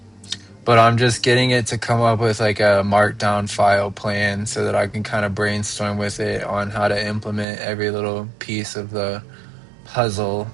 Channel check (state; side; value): drops out; left; at 7.5 s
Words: I'm just getting it to come up with like a markdown file plan so that I can kind of brainstorm with it on how to implement every little piece of the puzzle.